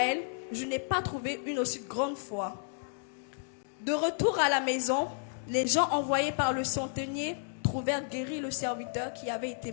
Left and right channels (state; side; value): silent; right; digital silence